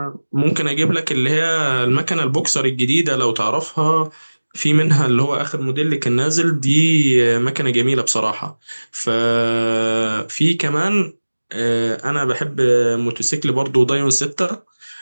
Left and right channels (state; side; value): inverted; both; correlation -1.00